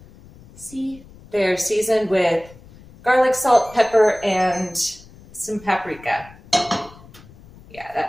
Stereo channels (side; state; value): left; noise; rumble, 22 dB below the sound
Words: See? They're seasoned with garlic, salt, pepper, and some paprika. Yeah,